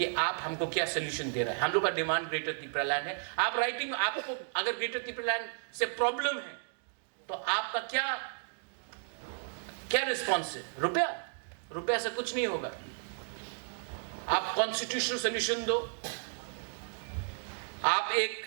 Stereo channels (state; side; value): silent; left; digital silence